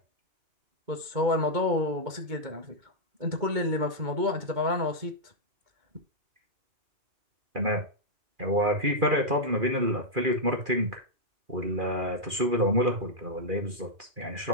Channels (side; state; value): left; late; 2.4 ms